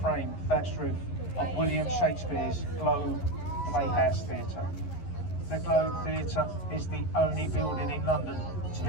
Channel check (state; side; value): late; right; 11 ms